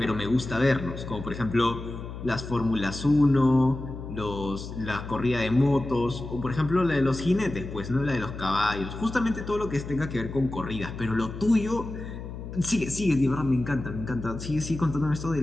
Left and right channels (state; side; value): noise; left; hum, 10 dB below the sound